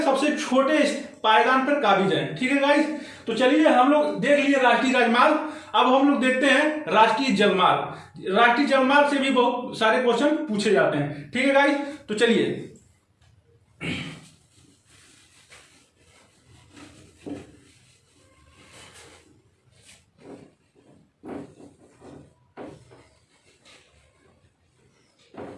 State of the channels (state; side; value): identical; both; correlation 1.00